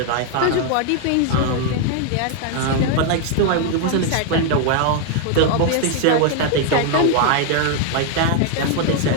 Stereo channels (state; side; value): different; both; correlation 0.00